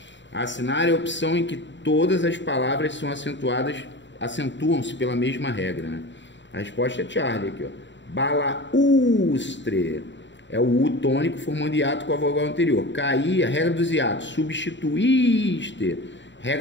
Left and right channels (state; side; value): late; right; 0.53 ms